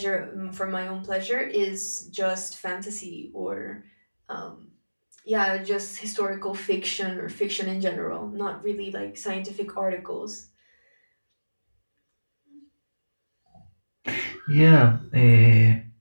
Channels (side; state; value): both; inverted; correlation -1.00